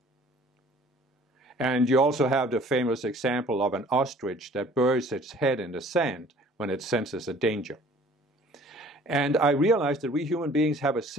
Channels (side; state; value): both; normal; correlation 0.52